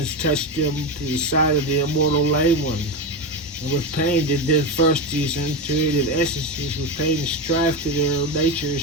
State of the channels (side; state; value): both; normal; correlation 0.16